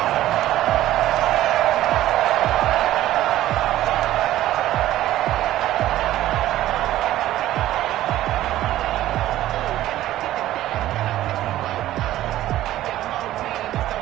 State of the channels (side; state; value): left; quieter; 14.2 dB